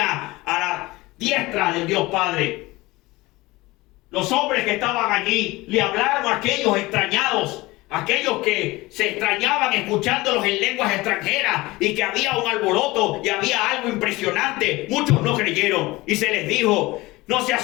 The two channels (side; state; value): right; quieter; 20.6 dB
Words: a la diestra del Dios Padre. Los hombres que estaban allí le hablaron a aquellos extrañados, aquellos que se extrañaban escuchándolos en lenguas extranjeras y que había un alboroto y había algo impresionante. Muchos no creyeron y se les dijo, no se